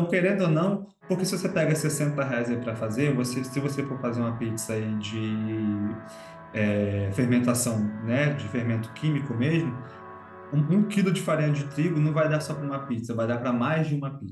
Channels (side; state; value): both; identical; correlation 1.00